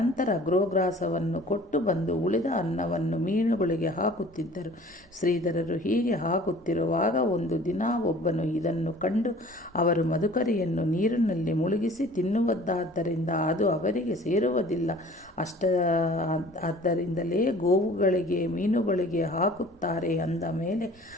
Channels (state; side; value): normal; both; correlation 0.48